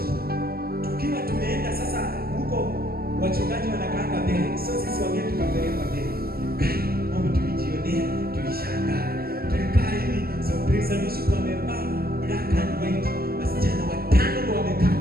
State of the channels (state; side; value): late; left; 0.44 ms